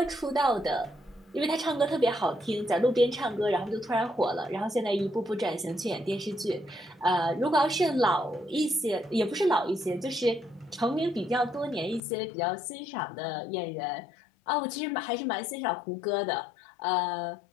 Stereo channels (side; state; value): right; drops out; at 12.0 s